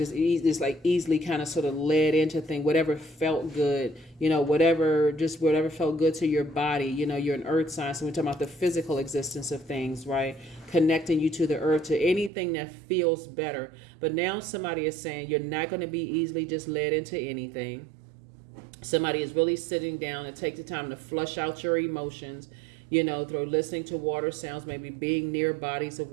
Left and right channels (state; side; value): drops out; left; at 12.3 s